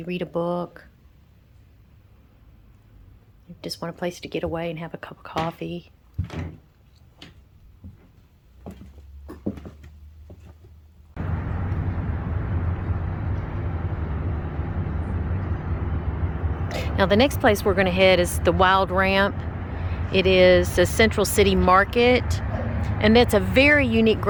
read a book. You just want a place to get away and have a cup of coffee. Now the next place we're going to head is the Wild Ramp. It is the Cental City Market. And that's a very unique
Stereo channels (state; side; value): identical; both; correlation 1.00